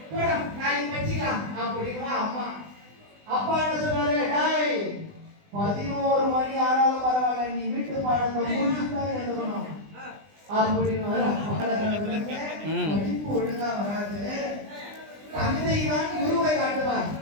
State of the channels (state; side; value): late; left; 20 ms